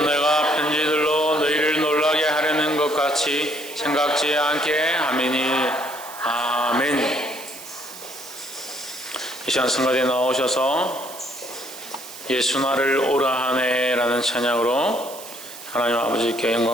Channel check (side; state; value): right; noise; hiss, 14 dB below the sound